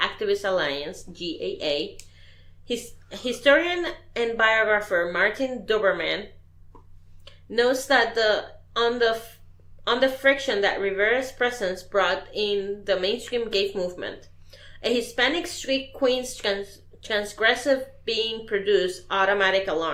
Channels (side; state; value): both; identical; correlation 1.00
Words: Activist Alliance, GAA. Historian and biographer Martin Doberman notes that on the friction that Rivera's presence brought in the mainstream gay movement. A Hispanic street queen's transgressive being produced automatic